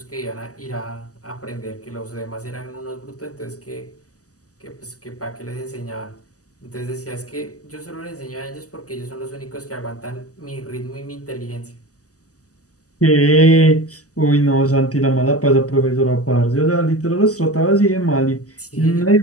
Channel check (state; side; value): late; right; 0.66 ms